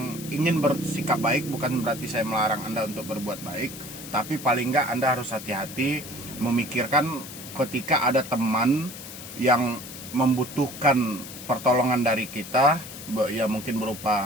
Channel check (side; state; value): left; noise; hiss, 12 dB below the sound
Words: ingin bersikap baik, bukan berarti saya melarang Anda untuk berbuat baik, tapi paling nggak Anda harus hati-hati memikirkan ketika ada teman yang membutuhkan pertolongan dari kita, ya mungkin